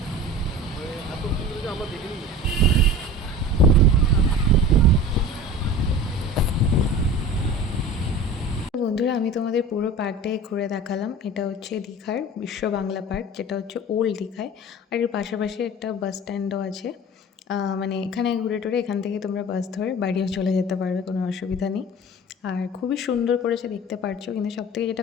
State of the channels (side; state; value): both; normal; correlation 0.37